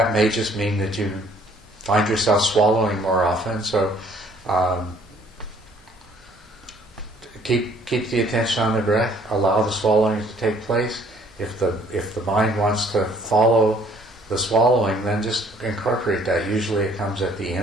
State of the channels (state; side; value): normal; both; correlation 0.60